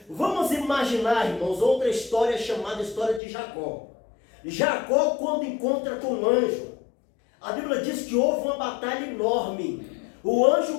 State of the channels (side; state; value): right; drops out; at 3.2 s